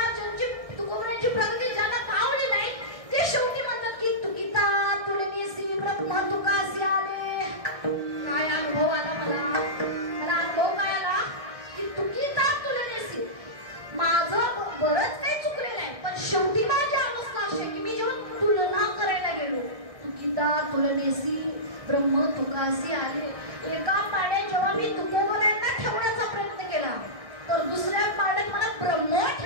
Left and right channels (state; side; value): late; left; 1.6 ms